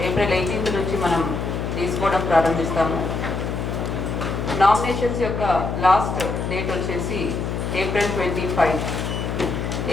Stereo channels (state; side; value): noise; left; hum, 3 dB below the sound